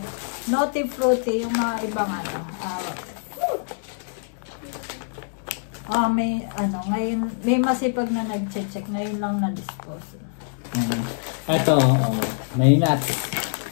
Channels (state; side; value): silent; right; digital silence